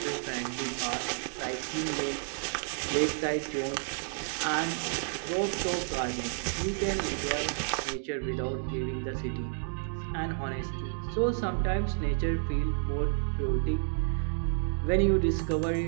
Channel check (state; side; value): silent; left; 57 dB below the other